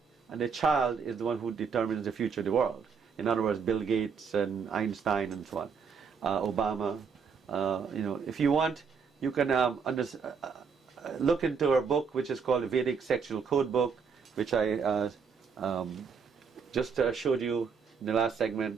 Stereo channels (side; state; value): left; quieter; 6.0 dB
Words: and the child is the one who determines the future of the world. In other words, Bill Gates and Einstein and so on, Obama. If you want, you can look into our book, which is called the Vedic Sexual Code Book, which I just showed you in the last